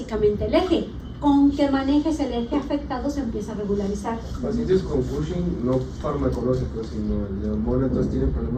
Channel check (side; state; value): both; identical; correlation 1.00